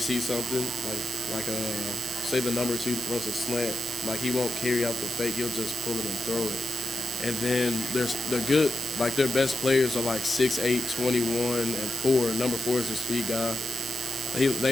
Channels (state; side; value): normal; both; correlation 0.87